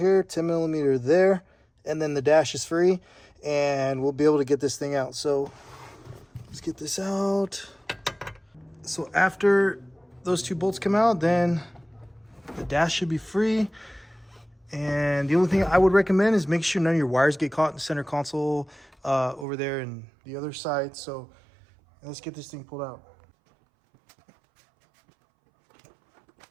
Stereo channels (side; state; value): left; drops out; at 19.5 s